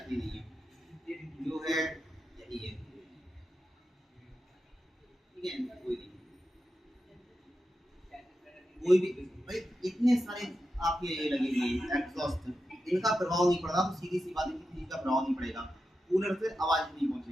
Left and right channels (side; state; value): both; normal; correlation 0.89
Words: नहीं है, जो है यही है, ठीक है, कोई नहीं, कोई भी भाई इतने सारे आपके ये लगे हुए एग्जॉस्ट, इनका प्रभाव नहीं पड़ता, तो सीधी सी बात है किसी चीज का प्रभाव नहीं पड़ेगा, कूलर से आवाज नहीं